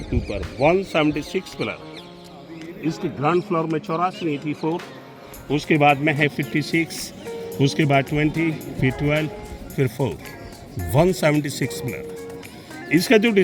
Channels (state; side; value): identical; both; correlation 1.00